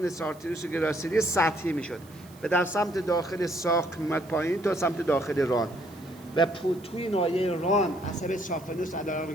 سارتریوس و گراسیلی سطحی میشد و در سمت داخل ساق میمد پایین تا سمت داخل ران و توی ناحیه ران عصب سافنوس علاوه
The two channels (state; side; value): noise; right; hiss, 25 dB below the sound